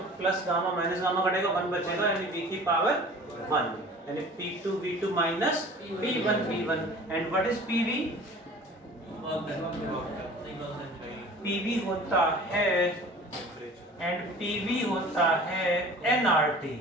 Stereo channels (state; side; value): normal; both; correlation 0.44